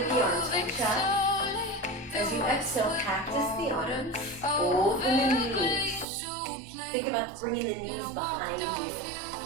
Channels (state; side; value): drops out; left; at 6.1 s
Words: the arms, reach up. As you exhale, cactus the arms, open the knees. Think about bringing the knees behind you.